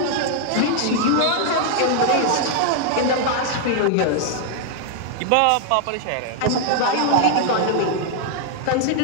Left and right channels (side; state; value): both; different; correlation 0.00